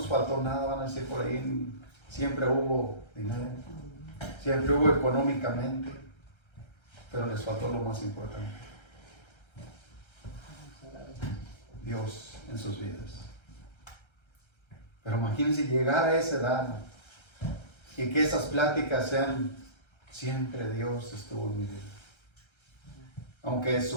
faltó nada, van a decir por ahí, siempre hubo dinero, siempre hubo económicamente, pero les faltó lo más importante: Dios en sus vidas. Pero imagínense llegar a esa edad y que esas pláticas sean siempre Dios estuvo en mi vida. Aunque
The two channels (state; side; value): late; right; 1.3 ms